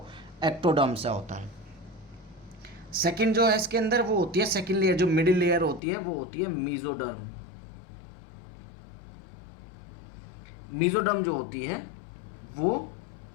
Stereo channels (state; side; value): drops out; right; at 5.8 s